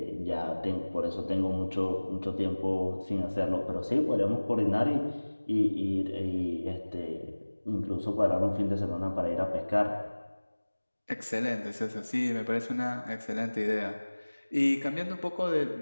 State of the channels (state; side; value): inverted; both; correlation -1.00